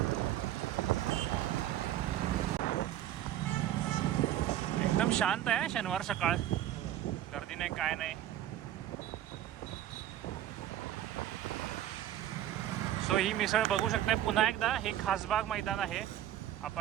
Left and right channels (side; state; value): left; quieter; 12.3 dB